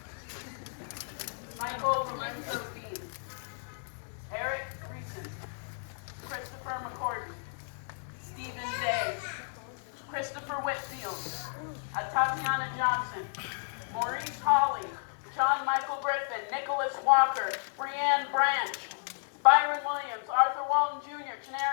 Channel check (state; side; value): silent; right; digital silence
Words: Michael Lorenzo Dean, Eric Creason, Christopher McCordy, Stephen Day, Christopher Whitfield, Tatiana Johnson, Maurice Hawley, John Michael Griffin, Nicholas Walker, Brianne Branch, Byron Williams, Arthur Walton Jr.,